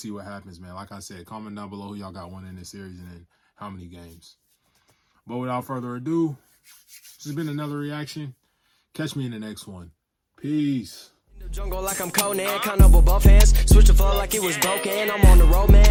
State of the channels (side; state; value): both; identical; correlation 1.00